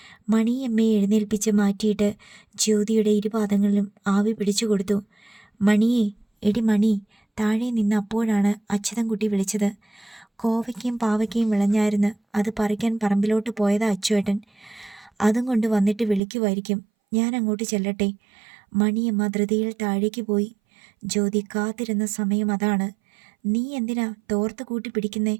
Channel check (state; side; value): drops out; left; at 16.2 s